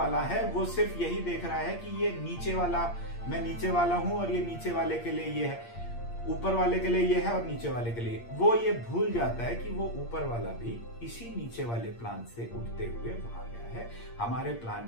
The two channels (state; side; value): late; right; 8.6 ms